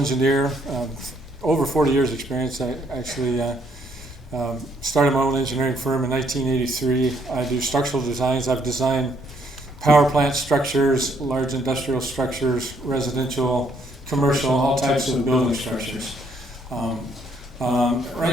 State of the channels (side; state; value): both; normal; correlation 0.70